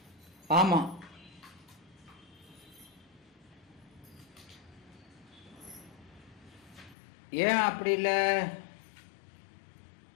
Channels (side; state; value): right; drops out; at 7.0 s